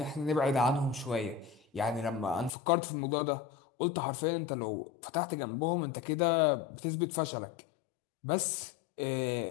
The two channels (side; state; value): right; drops out; at 2.5 s